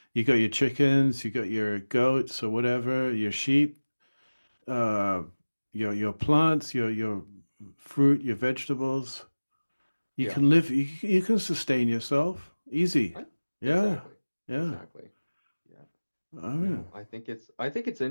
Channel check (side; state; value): both; inverted; correlation -1.00